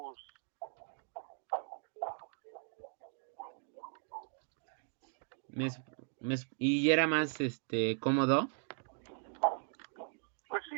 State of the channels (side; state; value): left; silent; 52 dB below the other